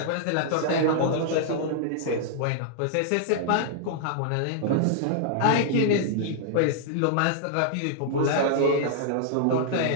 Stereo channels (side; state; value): both; different; correlation -0.01